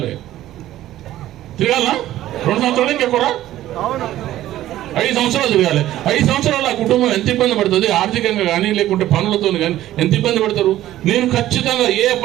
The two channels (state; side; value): quieter; left; 13.9 dB